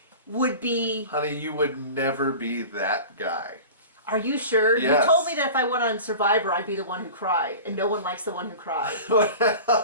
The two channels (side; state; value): both; inverted; correlation -0.36